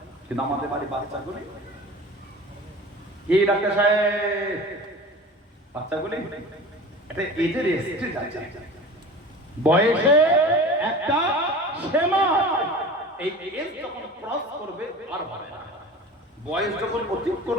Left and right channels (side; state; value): both; normal; correlation 0.37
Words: কিন্তু আমাদের বাড়ি বাচ্চাগুলি কি ডাক্তার সাহেব, বাচ্চাগুলি একটা এজের স্টেজ আছে, বয়সে একটা সীমা, এই এজ যখন ক্রস করবে আর হবে না, বয়স যখন